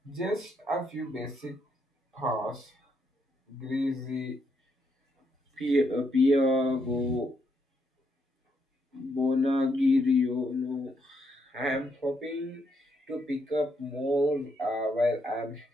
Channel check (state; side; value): normal; both; correlation 0.76